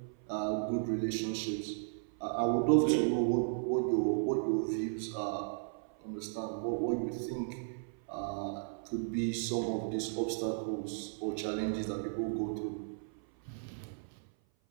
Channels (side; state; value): left; silent; 54 dB below the other